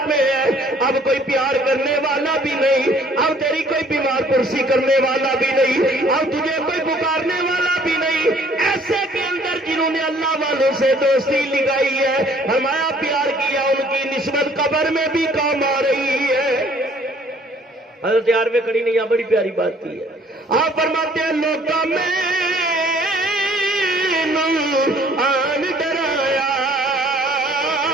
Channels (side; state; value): both; normal; correlation 0.58